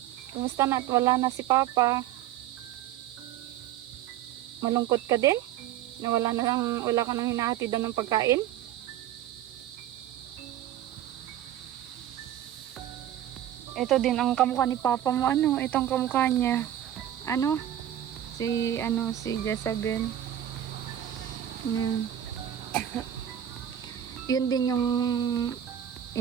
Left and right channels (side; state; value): left; quieter; 11.5 dB